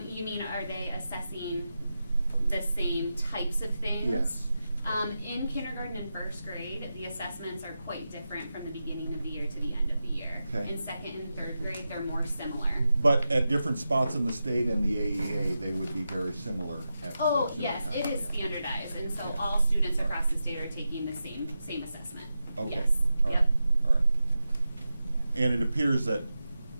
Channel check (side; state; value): both; inverted; correlation -0.90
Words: You mean, are they assessing the same types of things? Yes. In kindergarten and first grade, the assessments are quite different from the beginning of the year to the end of the year. Okay. In second and third grade, they're more similar. But at different spots in the state and the AEA, they would be very similar at Oh, similar yes, times. it is Yeah. standardized, and so Okay. all students across the state are taking the same assessment. Okay. Yes, All right. yep. All right. And it appears that